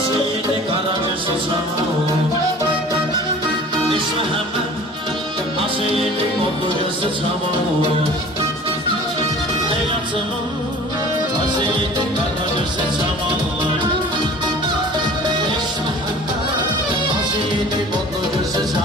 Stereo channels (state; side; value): normal; both; correlation 0.45